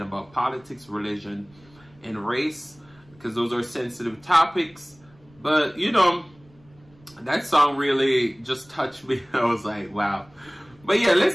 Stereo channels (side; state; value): right; noise; rumble, 29 dB below the sound